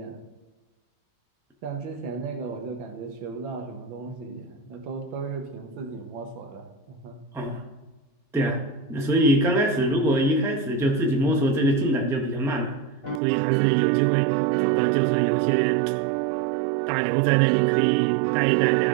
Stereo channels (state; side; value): drops out; left; at 13.2 s